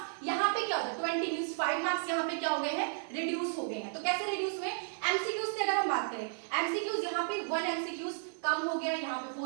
यहाँ पे क्या होता है, 20 मींस 5 मार्क्स यहाँ पे क्या हो गए हैं, रिड्यूस हो गए हैं। तो कैसे रिड्यूस हुए, एमसीक्यूज से अगर हम बात करें, एमसीक्यूज यहाँ पे 1 एमसीक्यूज कम हो गया, यहाँ पे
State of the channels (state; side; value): silent; left; 55 dB below the other